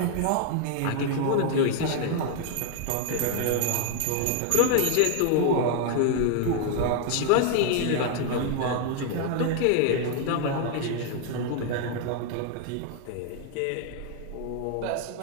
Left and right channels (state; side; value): different; both; correlation 0.00